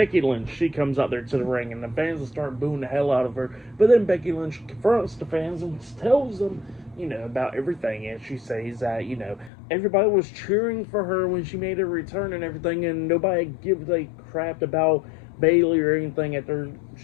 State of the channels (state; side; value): drops out; right; at 9.5 s